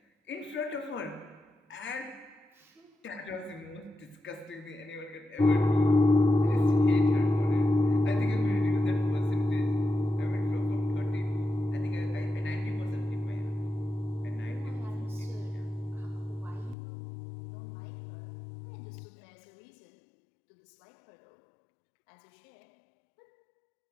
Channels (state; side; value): drops out; right; at 16.8 s